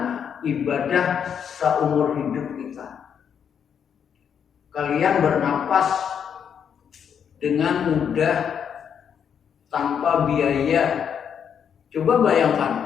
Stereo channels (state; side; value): quieter; right; 7.8 dB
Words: ibadah seumur hidup kita. Kalian bernapas dengan mudah tanpa biaya. Coba